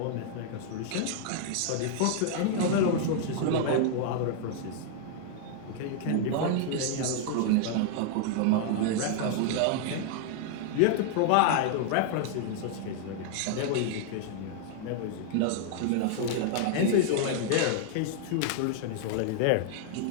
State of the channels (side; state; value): both; different; correlation 0.00